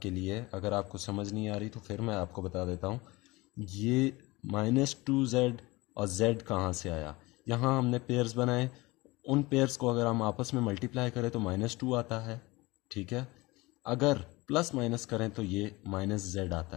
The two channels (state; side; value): quieter; right; 22.2 dB